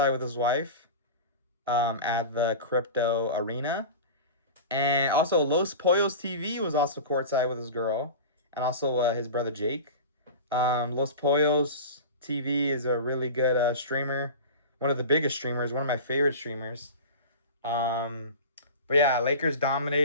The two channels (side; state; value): both; inverted; correlation -0.31